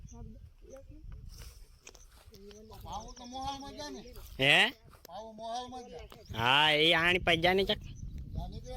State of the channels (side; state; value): both; identical; correlation 1.00